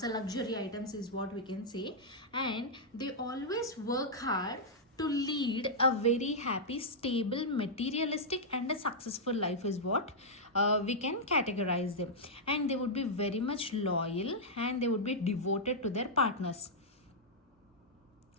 luxury items is what we can say. And they always work hard to lead a very happy, stable, materialistic and a successful life is what we can categorize them. And they would be very much loyal, and they would be devoted to their partners.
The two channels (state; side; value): normal; both; correlation -0.07